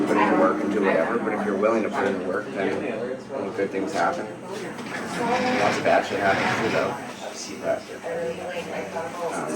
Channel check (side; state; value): both; identical; correlation 1.00